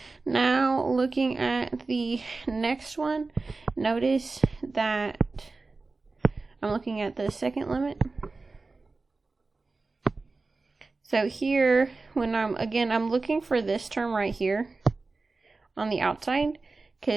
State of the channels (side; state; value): left; quieter; 3.7 dB